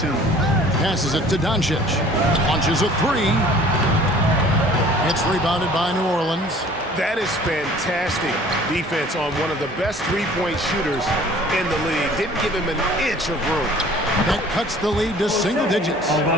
Passes it to Doncic. Launches a 3. It's rebounded by New Orleans. That is fantastic defense on one of the best three-point shooters in the league. Didn't give him an inch of room. That cuts the lead to single digits.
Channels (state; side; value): normal; both; correlation 0.50